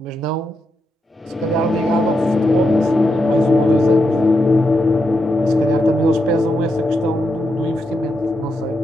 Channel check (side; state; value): both; normal; correlation 0.84